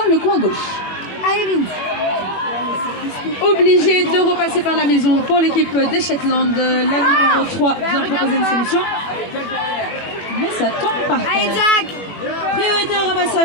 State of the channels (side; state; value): right; late; 21 ms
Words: le coin gauche. Obligé de repasser par la maison pour l'équipe des Shetland. La numéro 3 vient proposer une solution, mais ça tombe par terre. Priorité au